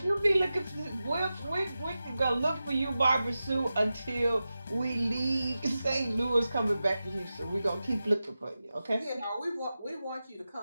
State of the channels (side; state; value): both; inverted; correlation -0.93